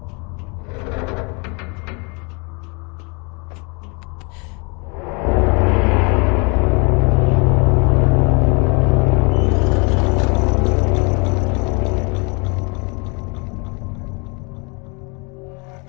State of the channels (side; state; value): right; quieter; 31.9 dB